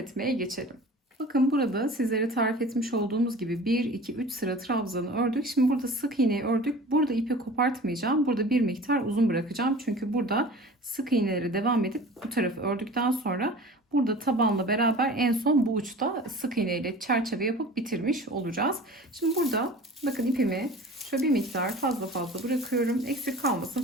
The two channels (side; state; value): both; normal; correlation 0.41